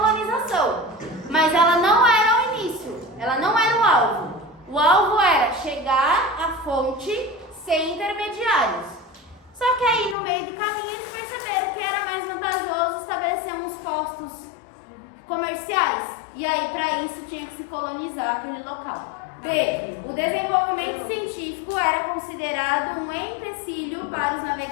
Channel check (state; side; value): drops out; right; at 10.2 s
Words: mas ela não era o início, ela não era o alvo. O alvo era chegar à fonte sem intermediários. Só que aí no meio do caminho eles perceberam que era mais vantajoso estabelecer uns postos comerciais. E aí para isso tinha que se colonizar aquele local. B. O desenvolvimento científico era considerado um empecilho para os